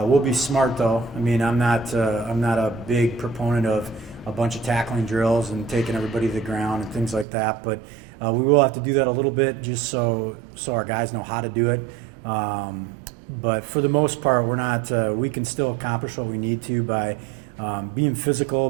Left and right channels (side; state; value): left; drops out; at 7.2 s